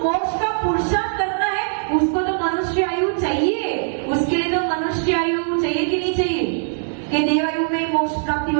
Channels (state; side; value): silent; left; digital silence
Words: मोक्ष का पुरुषार्थ करना है उसको तो मनुष्य आयु चाहिए। उसके लिए तो मनुष्य आयु चाहिए कि नहीं चाहिए? कि देव आयु में मोक्ष प्राप्ति